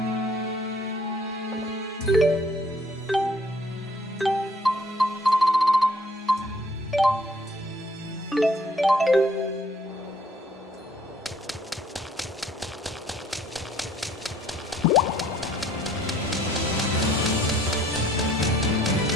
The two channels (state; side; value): normal; both; correlation 0.61